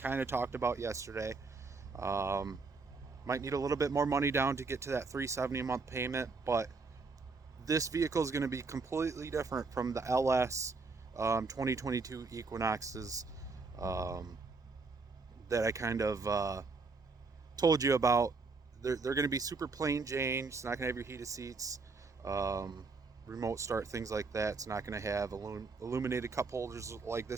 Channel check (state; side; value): quieter; left; 4.2 dB